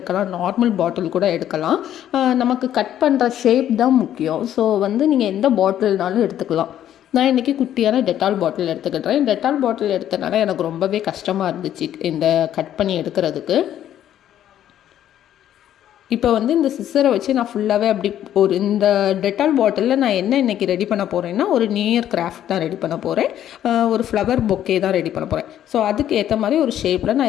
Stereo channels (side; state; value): right; quieter; 11.2 dB